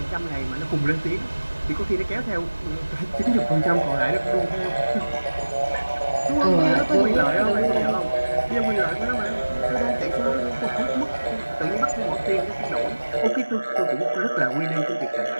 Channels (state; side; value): inverted; both; correlation -1.00